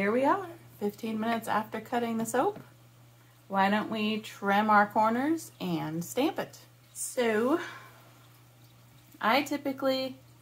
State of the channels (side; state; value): both; identical; correlation 1.00